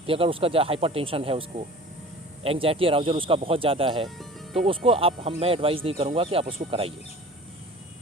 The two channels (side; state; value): both; normal; correlation 0.42